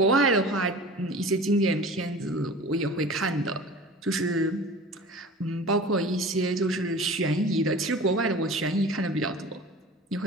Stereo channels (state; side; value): normal; both; correlation 0.39